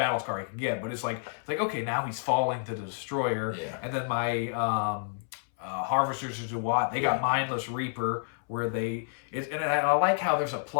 scar he can get. But it's like okay, now he's falling to the Destroyer, and then my Harvesters of Duat, they got Mindless Reaper, where and I like how there's a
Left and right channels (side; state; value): right; silent; 58 dB below the other